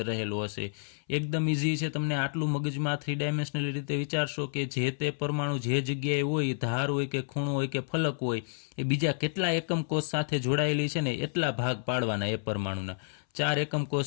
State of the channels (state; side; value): silent; right; 58 dB below the other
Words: રહેલો હશે. એકદમ ઇઝી છે. તમને આટલું મગજમાં 3 ડાયમેન્શનલ રીતે વિચારશો કે જે તે પરમાણુ જે જગ્યાએ હોય, ધાર હોય કે ખૂણો હોય કે ફલક હોય, એ બીજા કેટલા એકમ કોષ સાથે જોડાયેલી છે ને એટલા ભાગ પાડવાના એ પરમાણુના. 4 એકમ કોષ